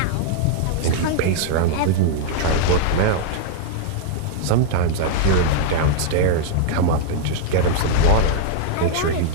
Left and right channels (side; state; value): both; different; correlation -0.01